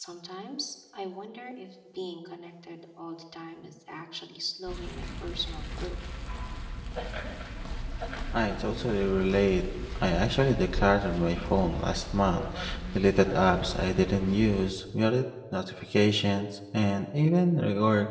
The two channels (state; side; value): identical; both; correlation 1.00